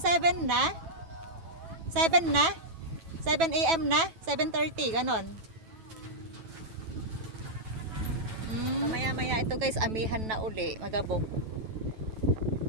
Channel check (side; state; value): left; late; 9.1 ms